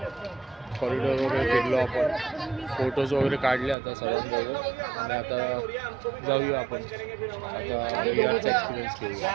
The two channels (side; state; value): left; drops out; at 3.8 s